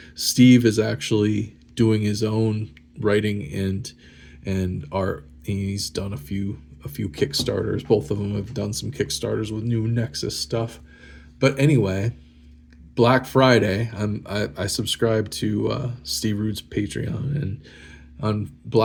Steve is actually doing his own writing and art. He's done a few Kickstarters. Both of them have done some Kickstarters with new Nexus stuff. But anyway, Black Friday, I subscribe to Steve Root's Patreon, and on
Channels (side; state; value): both; identical; correlation 1.00